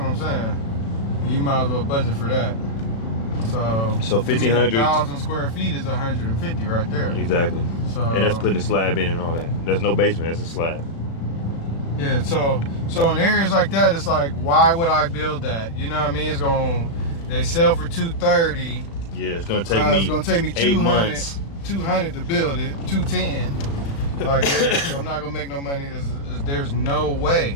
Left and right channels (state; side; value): late; right; 36 ms